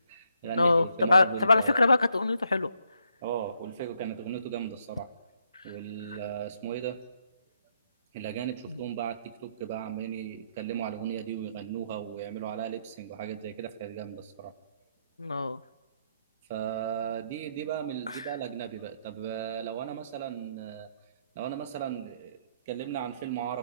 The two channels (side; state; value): both; inverted; correlation -0.74